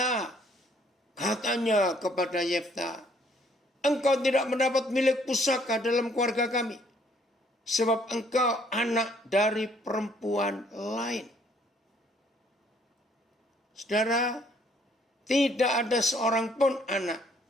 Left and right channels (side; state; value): both; normal; correlation 0.64